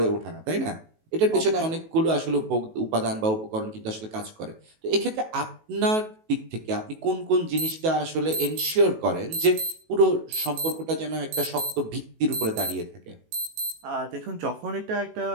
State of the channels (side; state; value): left; late; 18 ms